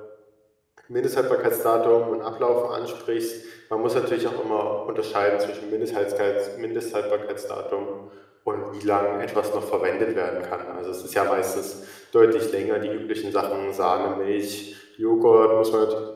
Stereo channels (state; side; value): identical; both; correlation 1.00